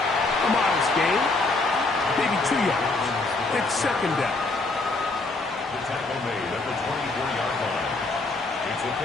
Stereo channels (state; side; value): quieter; right; 3.4 dB